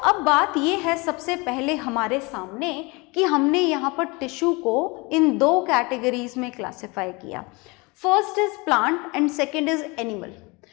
बात ये है सबसे पहले हमारे सामने कि हमने यहाँ पर टिश्यू को इन 2 कैटेगरीज में क्लासिफाई किया। First is plant and second is animal.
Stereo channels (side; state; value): right; quieter; 26.6 dB